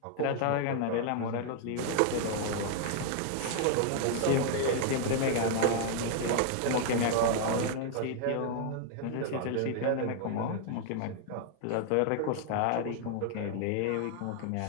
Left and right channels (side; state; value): both; different; correlation 0.00